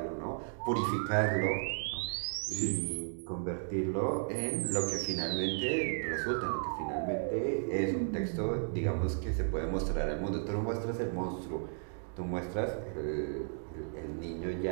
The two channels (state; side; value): silent; left; digital silence